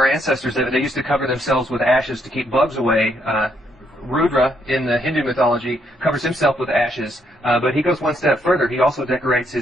ancestors that they used to cover themselves with ashes to keep bugs away. Rudra in the Hindu mythology covers himself with ashes, but he goes one step further. He also decorates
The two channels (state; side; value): normal; both; correlation 0.73